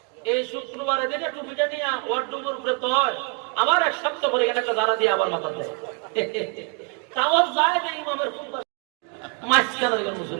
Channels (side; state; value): left; quieter; 37.6 dB